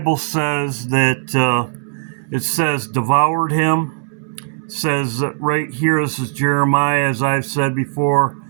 says that it says devoured him. It says right here, this is Jeremiah, as I've said before,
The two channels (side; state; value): left; silent; digital silence